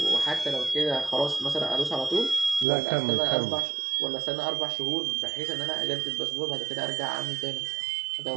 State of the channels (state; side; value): drops out; left; at 2.7 s